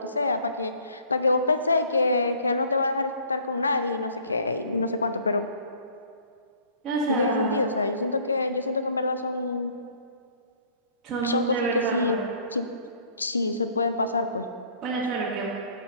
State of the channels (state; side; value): inverted; both; correlation -0.55